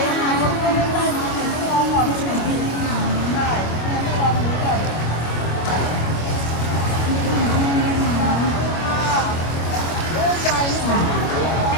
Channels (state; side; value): late; right; 25 ms